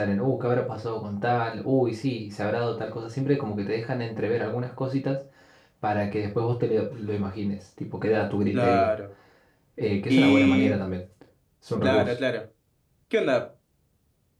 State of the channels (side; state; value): both; identical; correlation 1.00